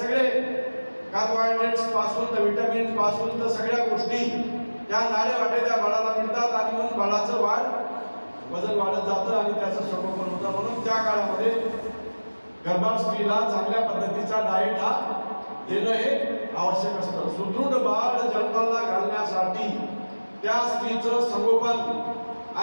कार्बोहायड्रेट्स पासून तर विटामिन्स पासून तर सगळ्या गोष्टी त्या नाळे वाटे त्या बाळाला मिळतात आणि म्हणून बाळाचं वजन वाढत जातं आणि त्याचं संगोपन होतं. म्हणून त्या काळामध्ये गर्भार स्त्रीला चांगल्या पद्धतीचा डाएट हा देणं हे आवश्यक असतं. सुदृढ बाळ जन्माला घालण्यासाठी त्या स्त्रीचं संगोपन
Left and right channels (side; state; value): both; inverted; correlation -1.00